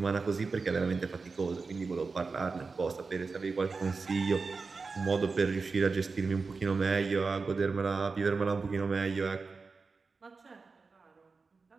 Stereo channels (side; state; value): left; quieter; 4.4 dB